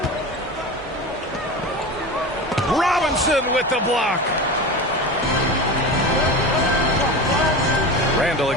Robinson with the block. Randall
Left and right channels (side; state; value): both; normal; correlation 0.27